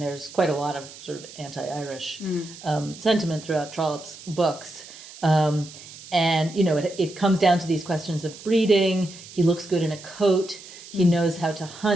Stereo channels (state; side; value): noise; right; hiss, 17 dB below the sound